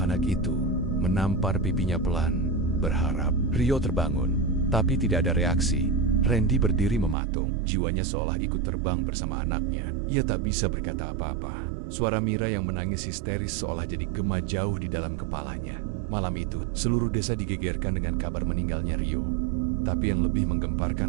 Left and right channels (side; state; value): left; drops out; at 7.2 s